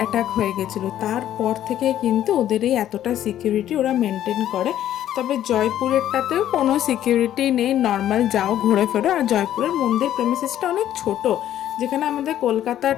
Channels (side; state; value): right; quieter; 11.7 dB